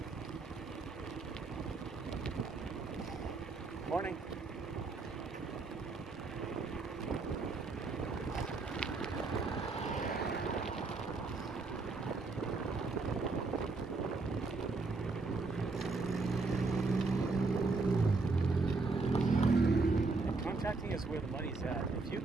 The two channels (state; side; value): quieter; left; 3.8 dB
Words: Morning. Contracting is where the money's at. If you